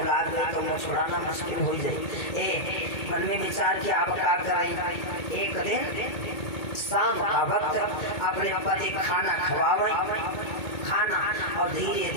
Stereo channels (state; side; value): late; right; 2.2 ms